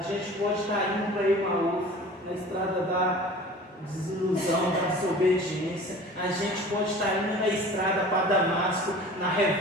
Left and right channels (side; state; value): both; normal; correlation 0.42